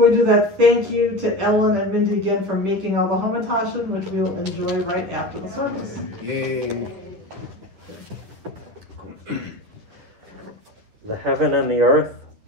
we do that, thank you to Ellen and Mindy again for making all the hamantashen, which we'll enjoy right after the service. Yay. The heaven and the earth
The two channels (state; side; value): late; left; 10 ms